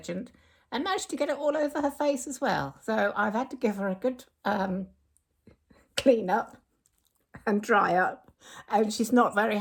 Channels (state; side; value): identical; both; correlation 1.00